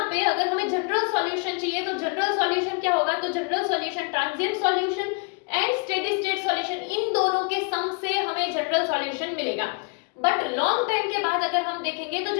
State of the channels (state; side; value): quieter; right; 34.4 dB